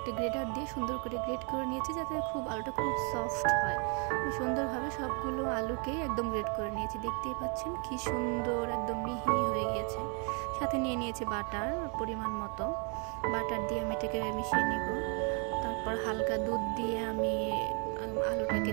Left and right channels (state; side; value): quieter; left; 37.1 dB